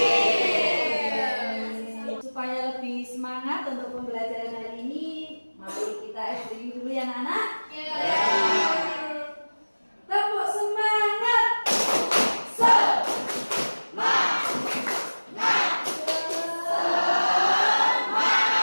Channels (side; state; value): both; inverted; correlation -1.00